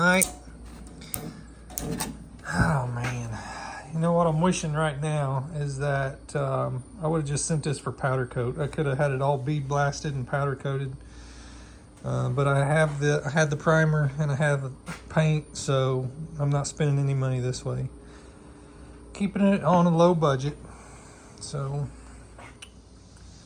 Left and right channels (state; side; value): identical; both; correlation 1.00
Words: Oh man, you know what I'm wishing right now is that I would have just sent this for powder coat. I could have had it all bead blasted and powder coated, but I had the primer and I have the paint, so I'm not spending any money this way. Keeping it on a low budget. So